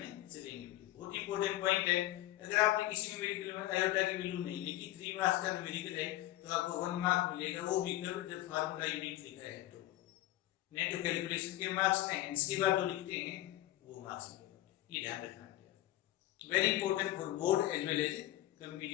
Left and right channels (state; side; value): quieter; right; 15.5 dB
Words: चलेंगे। बहुत इंपॉर्टेंट पॉइंट है, अगर आपने किसी न्यूमेरिकल में आयोटा की वैल्यू नहीं लिखी, 3 मार्क्स का न्यूमेरिकल है तो आपको 1 मार्क मिलेगा, वो भी जब फार्मूला यूनिट लिखा है तो। नहीं तो कैलकुलेशन के मार्क्स में इसके बाद जो लिखते हैं वो मार्क्स मिलेगा, ये ध्यान रखना है। Very important for board as well as